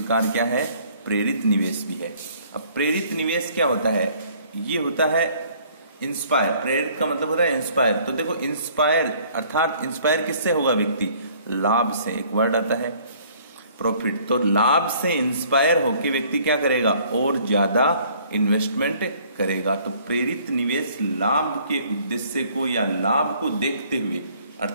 क्या है, प्रेरित निवेश भी है। अब प्रेरित निवेश क्या होता है, ये होता है इंस्पायर। प्रेरित का मतलब होता है इंस्पायर। तो देखो इंस्पायर, अर्थात इंस्पायर किससे होगा व्यक्ति, लाभ से। एक वर्ड आता है प्रॉफिट, तो लाभ से इंस्पायर होकर व्यक्ति क्या करेगा, और ज्यादा इन्वेस्टमेंट करेगा। तो प्रेरित निवेश लाभ के उद्देश्य को या लाभ को देखते हुए,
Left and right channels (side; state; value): both; inverted; correlation -0.58